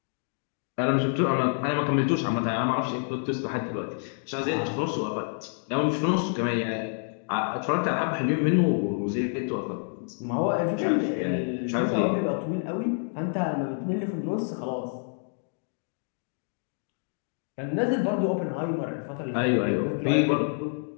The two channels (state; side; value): silent; right; 60 dB below the other